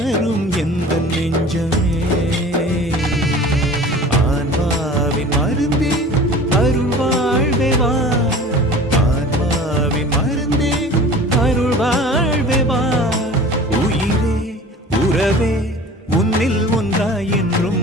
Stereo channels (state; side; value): normal; both; correlation 0.41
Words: எந்த நெஞ்சமே. ஆன்மாவின் மருந்தே அருள் வாழ்வே வா, ஆன்மாவின் மருந்தே அருள் வாழ்வே வா. உயிரே உறவே உன்னில் ஒன்றாய் என்றும்